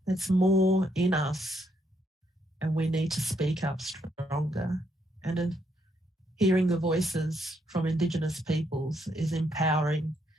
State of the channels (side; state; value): both; normal; correlation 0.75